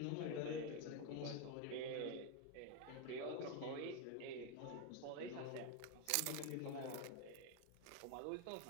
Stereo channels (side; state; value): both; different; correlation 0.01